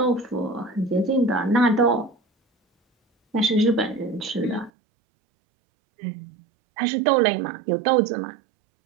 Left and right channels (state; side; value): drops out; left; at 4.7 s